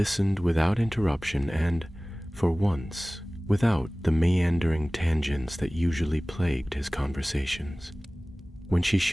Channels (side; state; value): both; normal; correlation 0.98